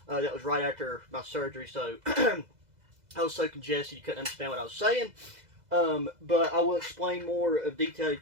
That was right after my surgery, so I was so congested you couldn't understand what I was saying. But I will explain more of detail. It's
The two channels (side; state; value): left; late; 2.0 ms